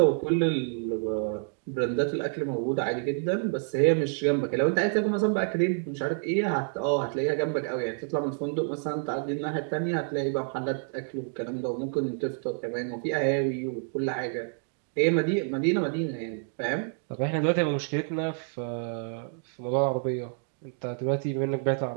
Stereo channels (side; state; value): left; silent; 59 dB below the other